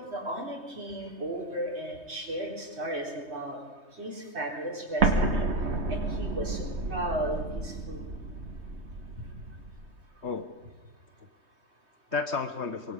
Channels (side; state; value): left; late; 3.2 ms